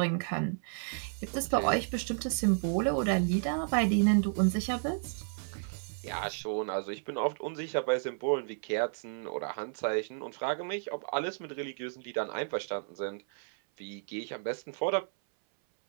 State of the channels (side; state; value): left; silent; 56 dB below the other